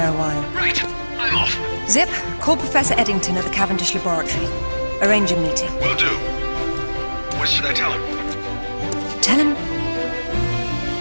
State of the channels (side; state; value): both; inverted; correlation -1.00